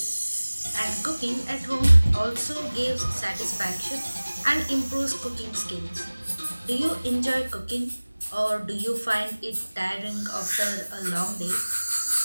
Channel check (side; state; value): both; inverted; correlation -1.00